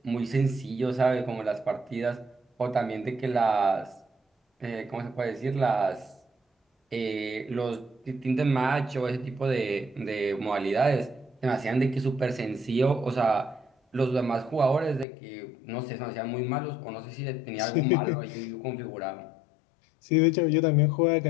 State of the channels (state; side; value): drops out; right; at 15.1 s